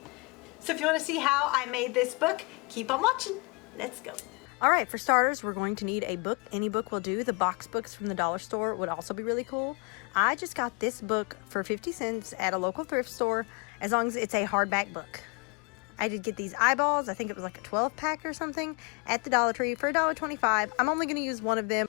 So if you want to see how I made this book, keep on watching. Let's go. Alright, for starters, we're going to need a book. Any book will do. The box books from the dollar store would also be really cool. I just got this book for 50 cents at a local thrift store, as long as it's a hardback book. I did get these eyeballs. I think it was like a 12-pack or something at the Dollar Tree for $1.25. I'm only going to use one of them.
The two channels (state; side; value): quieter; right; 30.2 dB